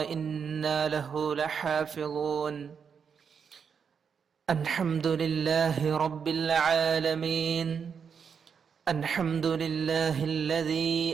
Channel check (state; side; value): quieter; left; 6.6 dB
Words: له لحافظون. الحمد لله رب العالمين. الحمد لله